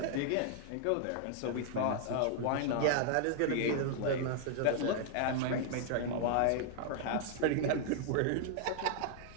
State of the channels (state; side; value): different; both; correlation -0.01